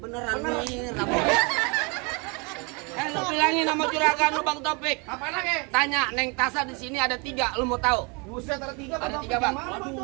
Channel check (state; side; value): quieter; left; 31.2 dB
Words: nih, lu bilangin sama juragan lu Bang Topik. Apa lagi? Tanya Neng Tasa di sini ada 3, lu mau tahu? Buset ada 3 Ada 3 Bang.